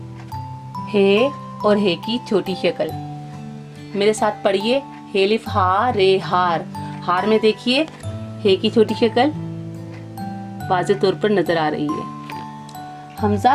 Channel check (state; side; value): identical; both; correlation 1.00